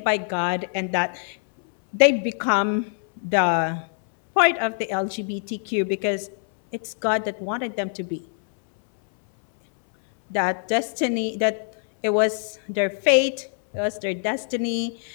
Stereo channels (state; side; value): silent; right; 62 dB below the other